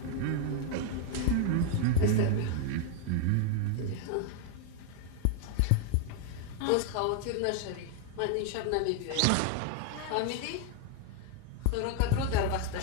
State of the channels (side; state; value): both; different; correlation 0.00